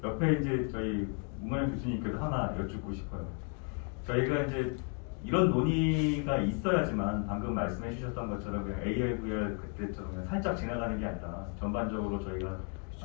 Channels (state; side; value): quieter; right; 39.2 dB